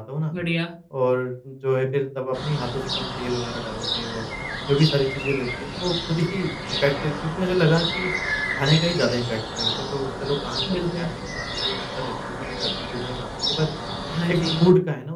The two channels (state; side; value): identical; both; correlation 1.00